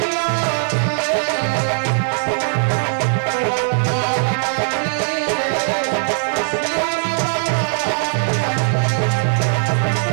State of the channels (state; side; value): silent; left; digital silence